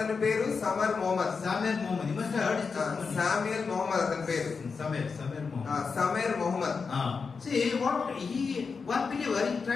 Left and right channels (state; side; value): quieter; right; 5.1 dB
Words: పేరు Samar Mohammed. Samuel Mohammed. You must have heard his testimony. Samuel Mohammed అతని పేరు. Samuel Mohammed. Samer Mohammed. See one believer, he